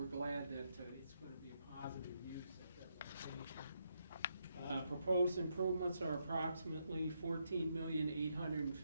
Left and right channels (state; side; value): inverted; both; correlation -0.79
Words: glad that it's going to be a positive use at that location. Proposed improvements are approximately